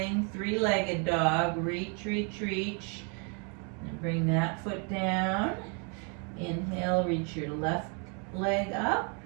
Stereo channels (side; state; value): left; quieter; 37.1 dB